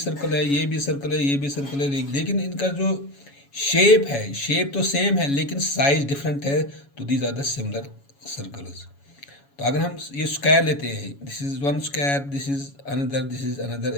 है, ये भी सर्कल है, ये भी सर्कल है, लेकिन इनका जो शेप है, शेप तो सेम है लेकिन साइज डिफरेंट है, तो these are the similar circles. तो अगर हम ये स्क्वायर लेते हैं, this is one square, this is another and this is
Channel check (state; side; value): late; right; 7.2 ms